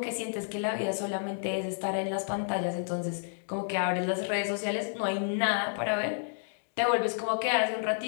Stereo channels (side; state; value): right; silent; digital silence